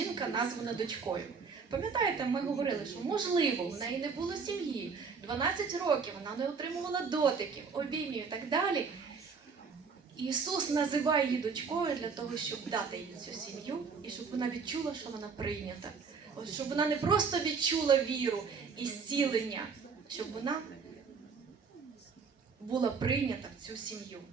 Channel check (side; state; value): left; quieter; 5.3 dB